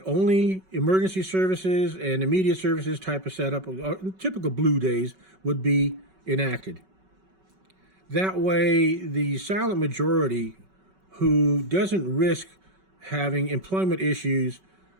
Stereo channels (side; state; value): left; late; 5.3 ms